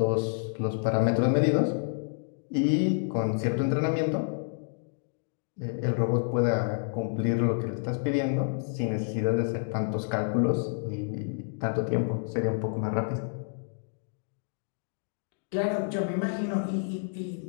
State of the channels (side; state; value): right; silent; digital silence